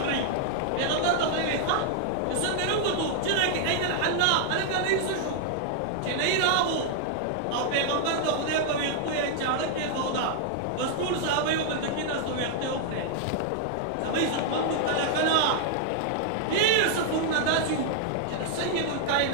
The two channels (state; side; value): different; both; correlation -0.01